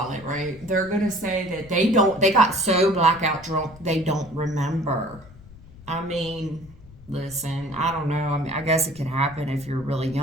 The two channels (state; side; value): noise; left; rumble, 21 dB below the sound